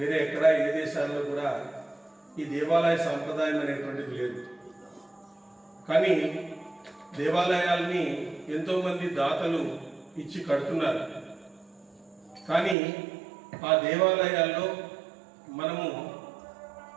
ఎక్కడ ఏ దేశాల్లో కూడా ఈ దేవాలయ సాంప్రదాయం అనేటువంటిది లేదు. కానీ దేవాలయాల్ని ఎంతోమంది దాతలు ఇచ్చి కడుతున్నారు. కానీ ఆ దేవాలయాల్లో మనము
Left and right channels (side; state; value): left; drops out; at 12.8 s